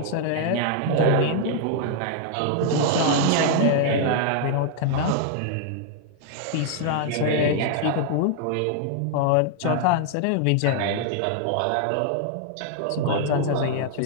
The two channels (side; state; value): both; different; correlation 0.00